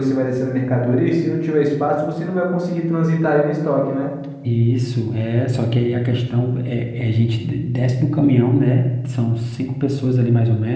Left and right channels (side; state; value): both; identical; correlation 1.00